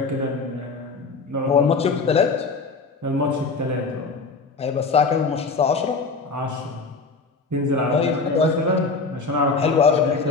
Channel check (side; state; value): right; quieter; 4.2 dB